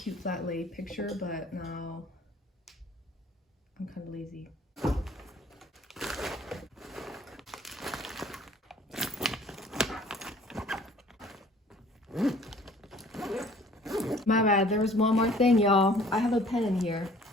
flat lay picture, but now I'm kind of lazy. My bad, there was one more thing, y'all. I have a pen in here.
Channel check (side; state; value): both; normal; correlation 0.53